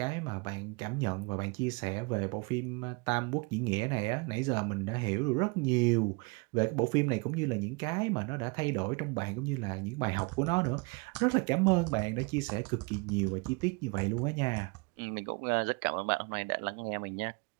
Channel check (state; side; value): quieter; left; 29.5 dB